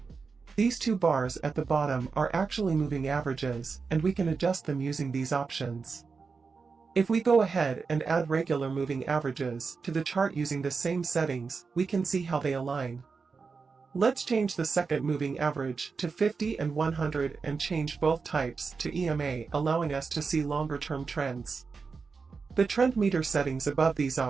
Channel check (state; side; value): quieter; left; 4.9 dB